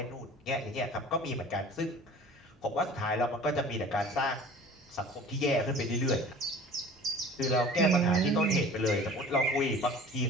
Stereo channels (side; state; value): both; normal; correlation 0.44